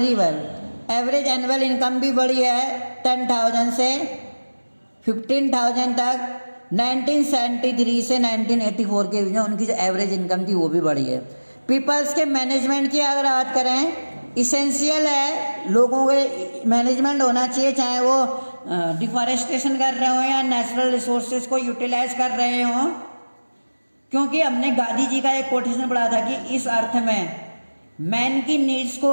वेल, एवरेज एनुअल इनकम भी बढ़ी है 10,000 से 15,000 तक। 1973 से 1984 के बीच में उनकी जो एवरेज इनकम थी वो भी बढ़ी है। पीपल्स के मैनेजमेंट की अगर बात करें, इसेंशियल है, लोगों के मैनेजमेंट होना चाहिए, चाहे वो डिफॉरेस्टेशन कर रहे हो या नेचुरल रिसोर्सेज को यूटिलाइज कर रहे हो, क्योंकि हमने गांधी जी का एक कोटेशन पढ़ा था कि इस अर्थ में मैन की नीड्स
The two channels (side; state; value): both; inverted; correlation -1.00